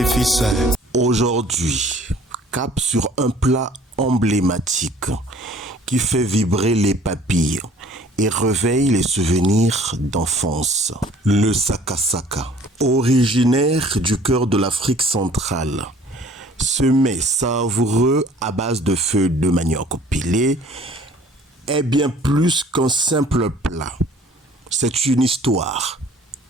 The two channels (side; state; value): both; normal; correlation 0.53